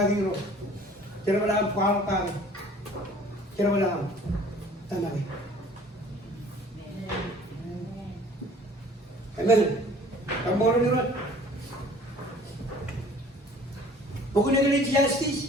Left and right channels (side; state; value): both; normal; correlation 0.51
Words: ro, cerita dalam kual kami. Kira mana? Tanah ni. Amen. Kamu orang ni orang. Bukan yang ini